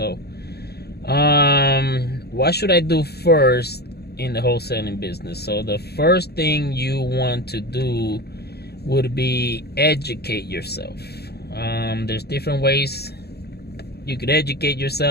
what should I do first in the wholesaling business? So the first thing you want to do would be educate yourself. There's different ways you could educate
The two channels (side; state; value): right; late; 0.47 ms